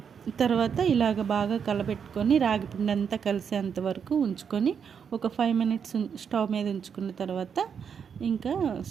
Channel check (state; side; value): quieter; left; 7.1 dB